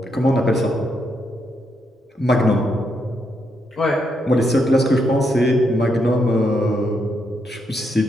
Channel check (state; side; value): normal; both; correlation 0.79